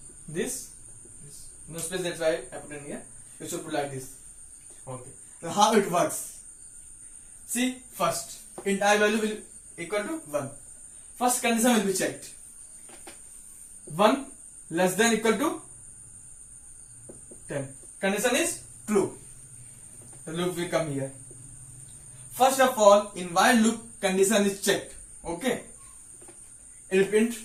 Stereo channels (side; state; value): both; identical; correlation 1.00